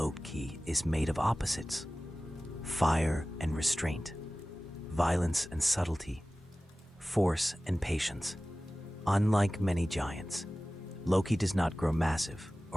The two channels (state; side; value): normal; both; correlation 0.97